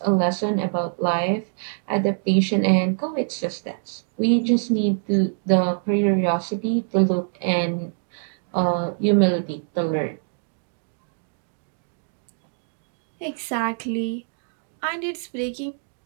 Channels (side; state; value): left; silent; digital silence